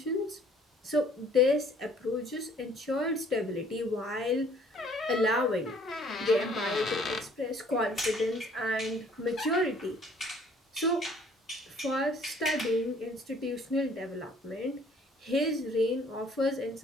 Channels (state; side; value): normal; both; correlation 0.58